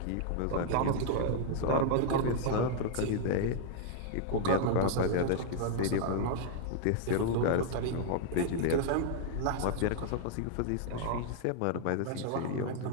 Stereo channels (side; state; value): both; different; correlation -0.01